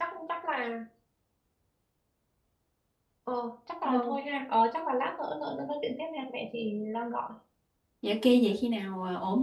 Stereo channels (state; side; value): identical; both; correlation 1.00